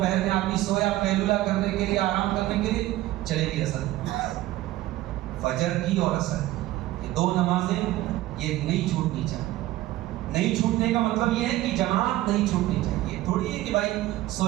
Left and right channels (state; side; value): quieter; left; 16.1 dB